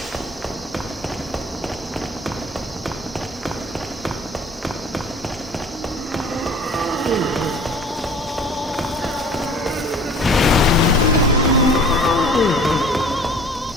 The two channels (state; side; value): normal; both; correlation 0.47